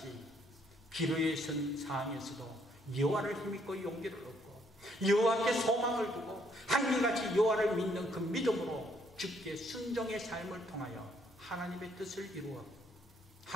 기로에 선 상황에서도 여호와를 힘입고 용기를 얻고 여호와께 소망을 두고 한결같이 여호와를 믿는 그 믿음으로 주께 순종의 삶을 통하여 하나님의 뜻을 이루어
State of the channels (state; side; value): normal; both; correlation 0.69